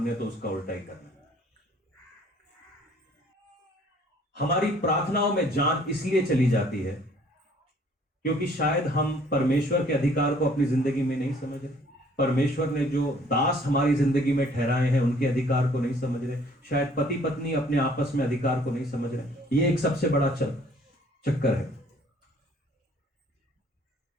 तो उसका उल्टा ही करना है। हमारी प्रार्थनाओं में जान इसलिए चली जाती है क्योंकि शायद हम परमेश्वर के अधिकार को अपनी जिंदगी में नहीं समझ रहे। परमेश्वर ने जो दास हमारी जिंदगी में ठहराए हैं उनके अधिकार को नहीं समझ रहे। शायद पति पत्नी अपने आपस में अधिकार को नहीं समझ रहे। ये एक सबसे बड़ा चक्कर है।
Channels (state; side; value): normal; both; correlation 0.58